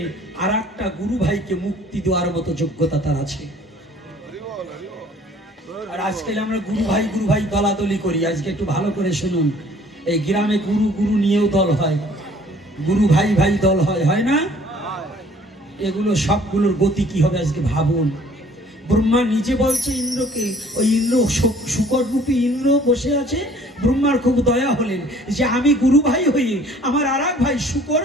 আর একটা গুরু ভাইকে মুক্তি দেওয়ার মতো যোগ্যতা তার আছে। আর আজকাল আমরা গুরু ভাই দলাদলি করি। আজকে একটু ভালো করে শুনুন, এই গ্রামে গুরু গুরু নিয়েও দল হয়, গুরু ভাই ভাই দল হয়, হয় না? এগুলো সবগুলোর গতি কি হবে আজকে ভাবুন। ব্রহ্মা নিজে বলছে ইন্দ্রকে, ওই ইন্দ্র শুকররূপী ইন্দ্র বসে আছে। ব্রহ্মার খুব দয়া হলেন যে আমি গুরু ভাই হয়ে আমার আর এক ভাই শুকর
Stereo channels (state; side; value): normal; both; correlation 0.55